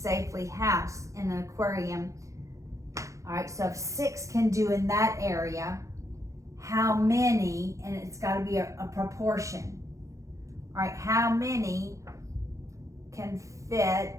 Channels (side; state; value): left; late; 0.15 ms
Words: housed in an aquarium? All right, so if 6 can do in that area, how many, and it's got to be a proportion. All right, how many can